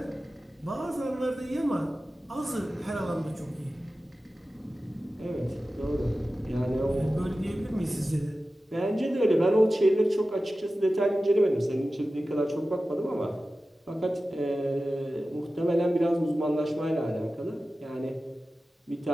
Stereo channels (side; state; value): both; normal; correlation 0.95